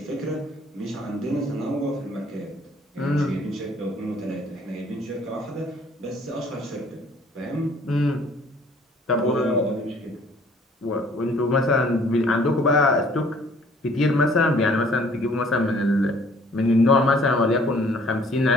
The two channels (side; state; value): both; normal; correlation 0.57